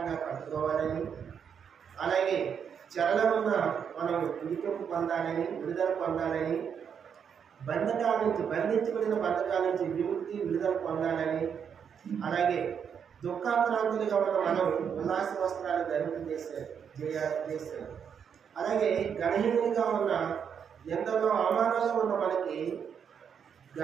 కట్టుకోవాలని, అలాగే చెరలో ఉన్న మనం విడిపింపు పొందాలని, విడుదల పొందాలని, బంధించబడిన బంధకాల నుంచి విముక్తి విడుదల పొందాలని, అలాగే దుఃఖాక్రాంతులుగా ఉన్న మనం ఉల్లాస వస్త్రాలు చేశారు. అలాగే గణహీనులుగా ఉన్న ఎంతలో అవమానంగా ఉన్న మనకి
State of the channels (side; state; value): left; quieter; 7.4 dB